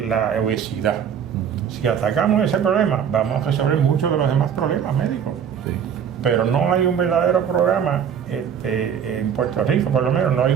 obesidad. Si atacamos ese problema, vamos a resolver muchos de los demás problemas médicos. Sí. Pero no hay un verdadero programa, en Puerto Rico por lo menos, no hay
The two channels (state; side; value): quieter; left; 8.1 dB